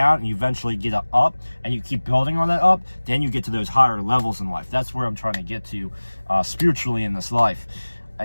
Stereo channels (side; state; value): both; inverted; correlation -1.00